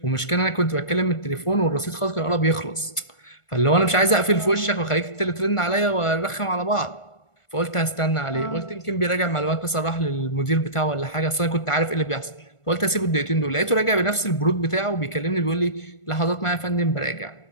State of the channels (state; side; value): late; right; 1.5 ms